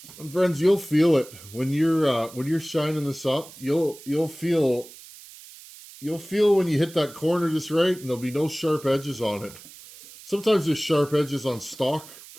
And friends, you'll feel it when you're shining this up. You'll feel when you hit that corner just right, and there'll be no sharp edges on it. Sometimes there's sharp edges on stock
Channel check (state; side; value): noise; right; hiss, 19 dB below the sound